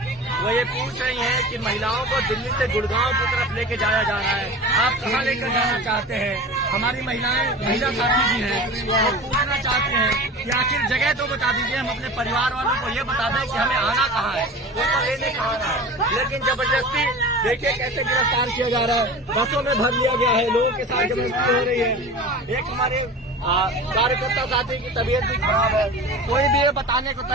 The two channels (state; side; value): normal; both; correlation 0.35